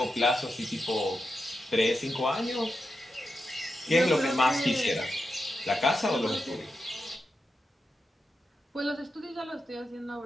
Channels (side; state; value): both; normal; correlation 0.88